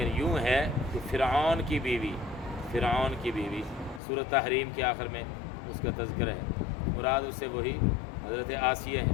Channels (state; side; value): drops out; right; at 4.0 s